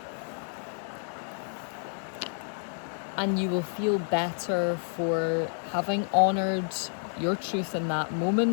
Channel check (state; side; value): silent; right; 58 dB below the other